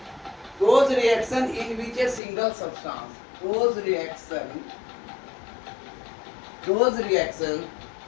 Those reaction in which a single substance, those reaction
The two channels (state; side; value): drops out; right; at 2.2 s